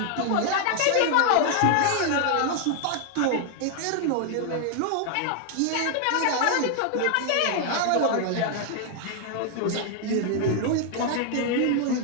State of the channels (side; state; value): both; different; correlation 0.00